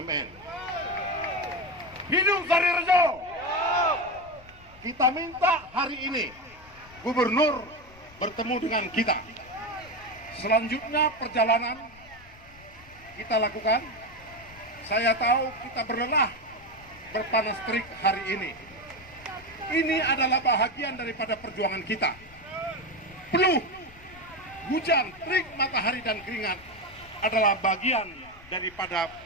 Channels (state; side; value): noise; left; rumble, 22 dB below the sound